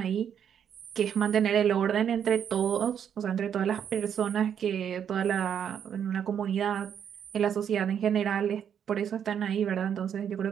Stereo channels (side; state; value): left; quieter; 8.5 dB